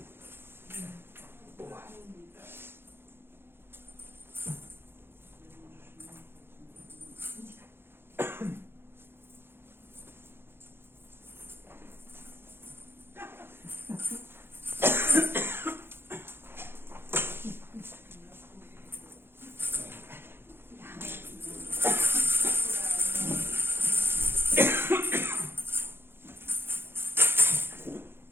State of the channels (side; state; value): left; late; 0.11 ms